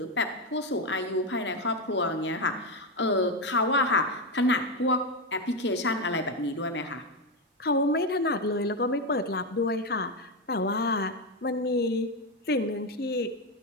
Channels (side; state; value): both; normal; correlation 0.09